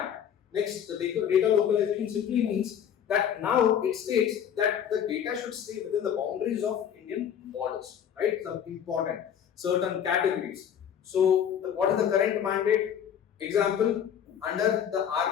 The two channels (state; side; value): quieter; right; 8.9 dB